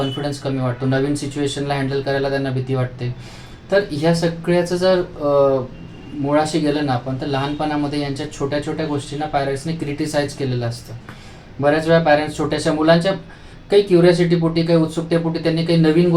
कमी वाटतो, नवीन सिच्युएशनला हँडल करायला त्यांना भीती वाटते. तर ह्या सगळ्याचं जर मुळाशी गेलं ना आपण, तर लहानपणामध्ये यांच्या छोट्या छोट्या गोष्टींना पॅरेंट्सने क्रिटिसाइज केलेलं असतं. बऱ्याच वेळा पॅरेंट्स छोट्याशा मुलांच्या काही क्युरिओसिटीपोटी, काही उत्सुकतेपोटी त्यांनी काही नवीन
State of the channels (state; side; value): identical; both; correlation 1.00